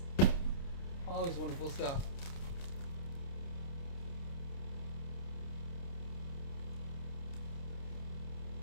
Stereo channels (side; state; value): right; late; 29 ms